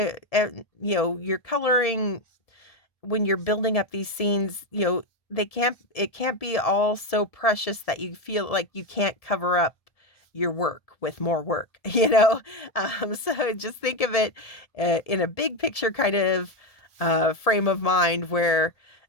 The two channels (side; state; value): right; late; 1.7 ms